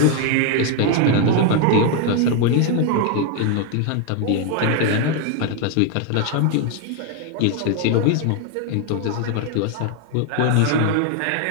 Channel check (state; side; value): different; both; correlation 0.01